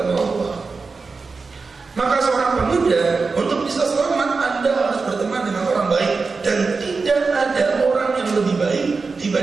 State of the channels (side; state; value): left; quieter; 4.4 dB